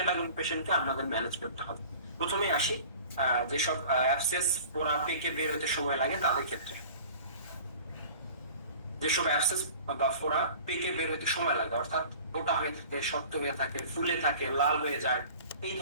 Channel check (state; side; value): inverted; both; correlation -0.44